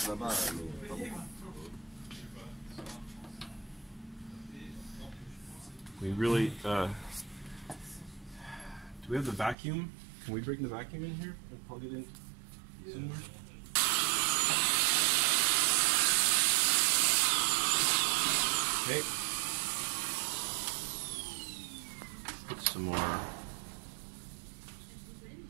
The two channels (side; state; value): left; drops out; at 9.6 s